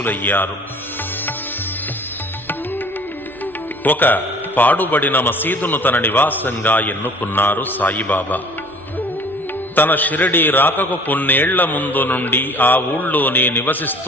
ఒక పాడుబడిన మసీదును తన నివాసంగా ఎన్నుకున్నారు సాయిబాబా. తన షిరిడీ రాకకు కొన్నేళ్ల ముందు నుండి ఆ ఊళ్ళోనే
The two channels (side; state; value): both; normal; correlation 0.49